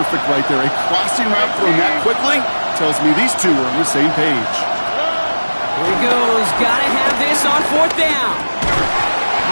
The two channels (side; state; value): both; inverted; correlation -1.00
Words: right there. A crossing route thrown that quickly tells me these two are on the same page. Here he goes. Got to have this on 4th down.